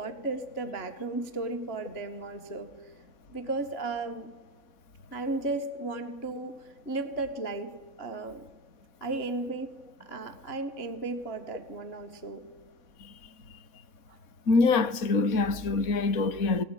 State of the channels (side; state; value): right; late; 3.6 ms